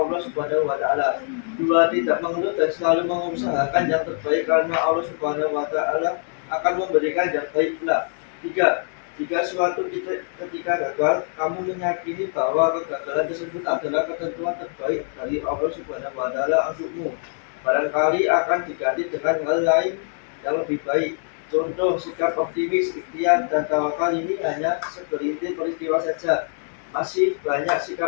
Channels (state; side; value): silent; right; 63 dB below the other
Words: Subhanahu wa taala. 2. Tidak mengeluh dan selalu mengusahakan yang terbaik karena Allah Subhanahu wa taala akan memberikan yang baik pula. 3. Jika suatu ketika gagal, kamu meyakini bahwa kegagalan tersebut adalah ketentuan terbaik dari Allah Subhanahu wa taala untukmu. Barangkali akan diganti dengan hal lain yang lebih baik. Contoh sikap optimis, ikhtiar, dan tawakal ini hanya segelintir peristiwa saja. Masih banyak